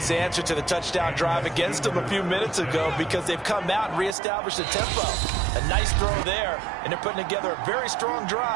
answer to the touchdown drive against them a few minutes ago because they've come out and reestablished the tempo. A nice throw there, and they're putting together a very strong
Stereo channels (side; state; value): left; drops out; at 4.2 s